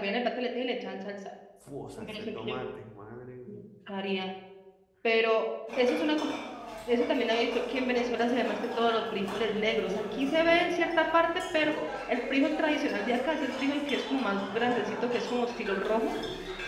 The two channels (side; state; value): both; identical; correlation 1.00